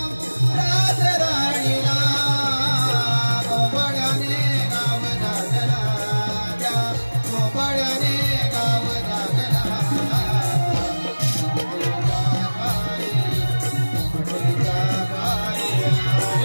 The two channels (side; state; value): both; inverted; correlation -1.00